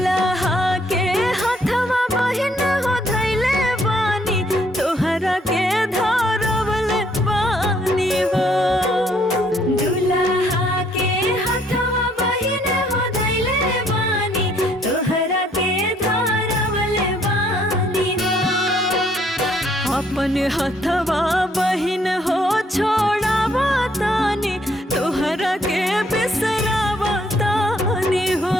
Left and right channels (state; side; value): normal; both; correlation 0.66